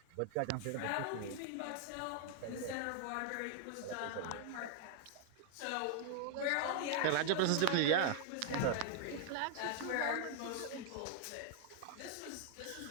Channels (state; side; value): different; both; correlation 0.00